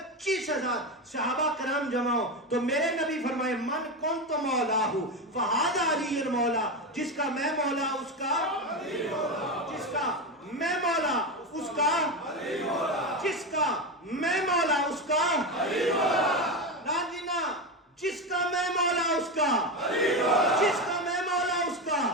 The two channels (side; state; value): both; normal; correlation 0.16